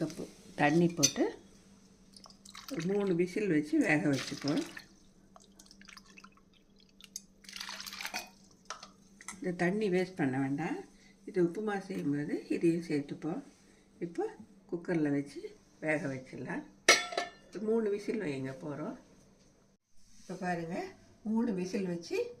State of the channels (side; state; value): both; identical; correlation 1.00